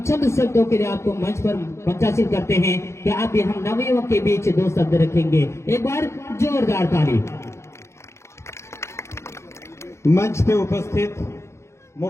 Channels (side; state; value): right; late; 0.13 ms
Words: चंद शब्दों के लिए आपको मंच पर मंचासीन करते हैं कि आप भी हम नवयुवक के बीच 2 शब्द रखेंगे। एक बार जोरदार ताली। मंच पे उपस्थित